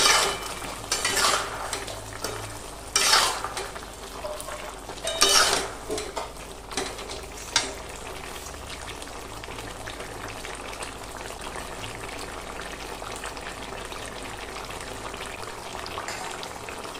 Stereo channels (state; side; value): identical; both; correlation 1.00